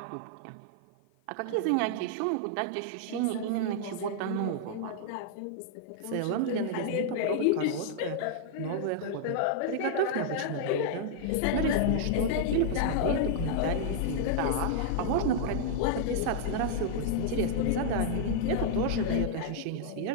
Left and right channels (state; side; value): different; both; correlation -0.01